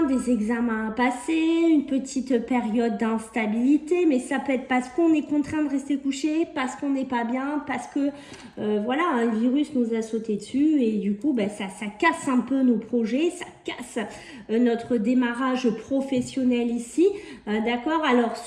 des examens à passer, une petite période d'instabilité, mais ça peut être parce qu'on est contraint de rester couché, parce qu'on n'est pas bien, parce que voilà, un virus nous a sauté dessus et du coup, ben, ça casse un peu nos projets, ça casse notre démarrage professionnel ici, d'accord. Alors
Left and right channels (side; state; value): both; identical; correlation 1.00